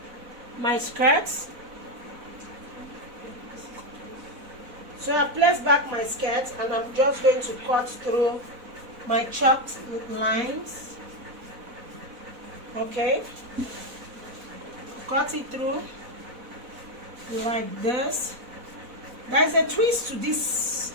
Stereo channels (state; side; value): late; left; 4.0 ms